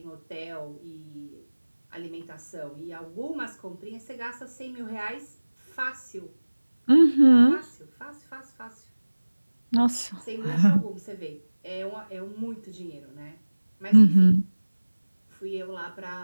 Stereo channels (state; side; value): inverted; both; correlation -1.00